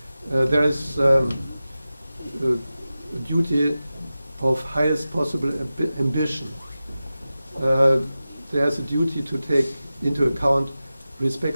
There is a duty of highest possible ambition. There's a duty to take into account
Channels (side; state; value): both; inverted; correlation -0.94